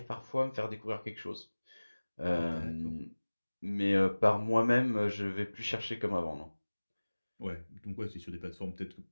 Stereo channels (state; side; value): inverted; both; correlation -1.00